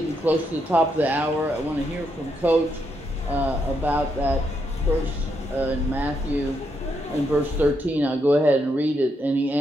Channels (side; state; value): both; normal; correlation 0.79